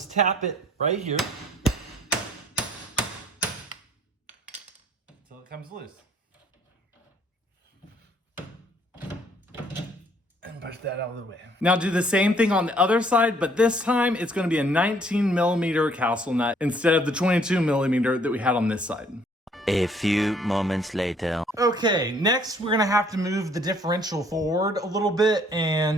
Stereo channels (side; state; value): both; normal; correlation 0.62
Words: tap it right here until it comes loose. And push that out of the way. Now do the same thing on the other side, but this time it's gonna be a 19 millimeter castle nut instead of the 22 millimeter that we had on this side. A few moments later. Okay, next we're gonna have to move the differential forward a little bit,